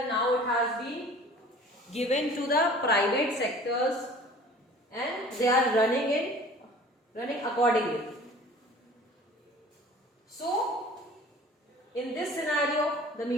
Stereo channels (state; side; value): normal; both; correlation 0.46